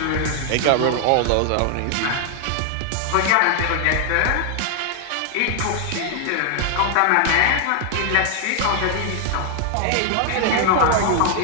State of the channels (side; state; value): both; different; correlation 0.00